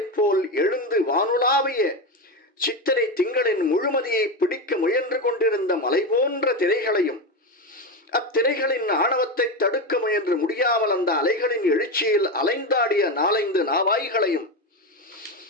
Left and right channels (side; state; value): both; normal; correlation 0.15